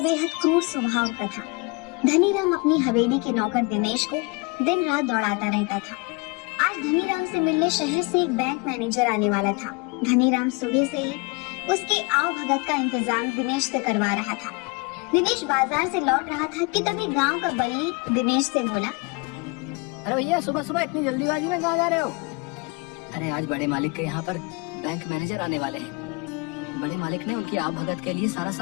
क्रूर स्वभाव का था। धनीराम अपनी हवेली के नौकर दिनेश को दिन रात दौड़ाता रहता था। आज धनीराम से मिलने शहर से एक बैंक मैनेजर आने वाला था। धनीराम सुबह से ही उसके आव भगत का इंतजाम दिनेश से करवा रहा था। दिनेश बाजार से लौट रहा था कि तभी गांव का बल्ली दिनेश से बोला, अरे भैया सुबह सुबह इतनी जल्दीबाजी में कहाँ जा रहे हो? अरे आज बड़े मालिक के यहाँ पर बैंक मैनेजर आने वाले हैं। बड़े मालिक ने उनकी आव भगत के लिए सारा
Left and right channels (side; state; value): right; quieter; 29.5 dB